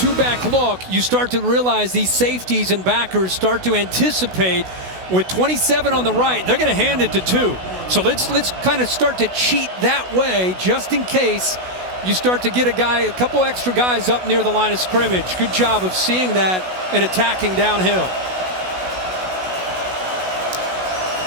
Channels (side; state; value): left; late; 16 ms